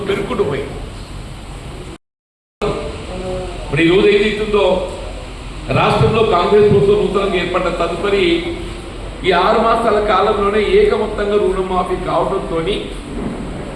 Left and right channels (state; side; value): identical; both; correlation 1.00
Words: పెరుగుకుంటూ పోయి ఇప్పుడు ఈరోజు ఏదైతుందో రాష్ట్రంలో కాంగ్రెస్ ప్రభుత్వం నూతనంగా ఏర్పడ్డ తదుపరి ఈ 6 మాసాల కాలంలోనే ఏకమొత్తంగా రుణమాఫీ కావడంతో